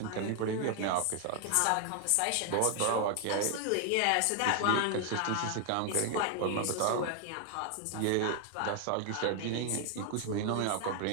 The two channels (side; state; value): both; different; correlation 0.00